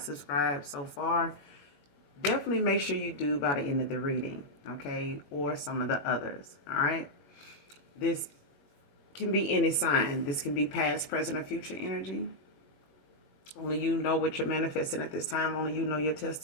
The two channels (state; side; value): late; right; 21 ms